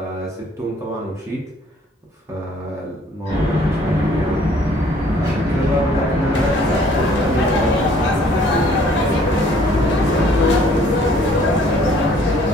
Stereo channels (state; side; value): normal; both; correlation 0.59